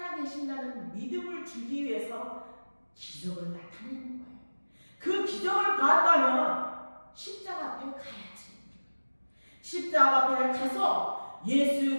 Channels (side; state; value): both; inverted; correlation -1.00